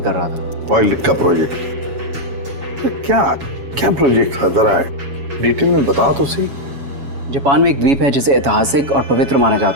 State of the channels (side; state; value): left; late; 7.2 ms